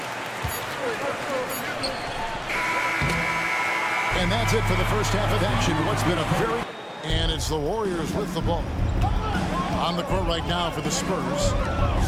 And that's it for the first half of action. What's been a very... And it's the Warriors with the ball. On the court right now for the Spurs.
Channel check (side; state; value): both; identical; correlation 1.00